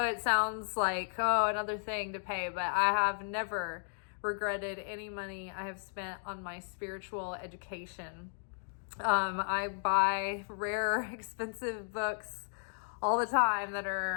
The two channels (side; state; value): right; silent; digital silence